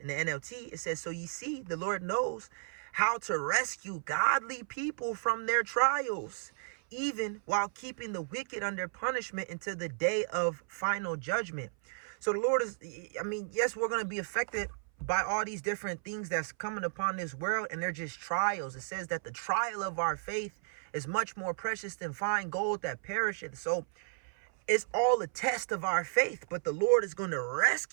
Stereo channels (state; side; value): silent; left; 55 dB below the other